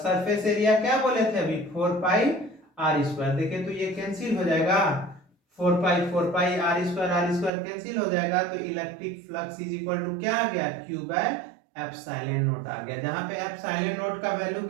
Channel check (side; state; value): left; drops out; at 7.5 s